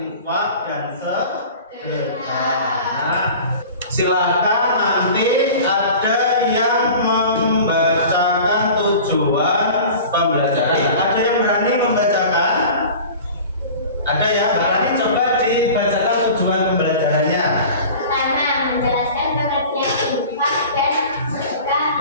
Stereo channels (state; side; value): inverted; both; correlation -0.39